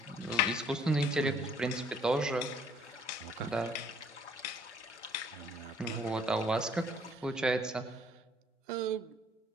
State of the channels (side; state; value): both; normal; correlation 0.61